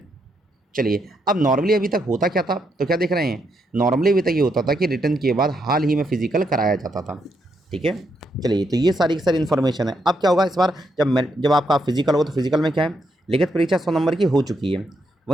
चलिए। अब नॉर्मली अभी तक होता क्या था, तो क्या देख रहे हैं? नॉर्मली अभी तक ये होता था कि रिटर्न के बाद हाल ही में फिजिकल कराया जाता था। ठीक है, चलिए। तो ये सारी की सारी इन्फॉर्मेशन है। अब क्या होगा इस बार? जब आपका फिजिकल हो, तो फिजिकल में क्या है? लिखित परीक्षा 100 नंबर की हो चुकी है,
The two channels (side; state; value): both; normal; correlation 0.79